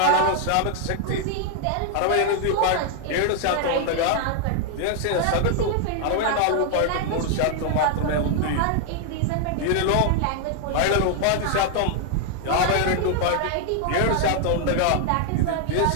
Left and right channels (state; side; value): different; both; correlation 0.00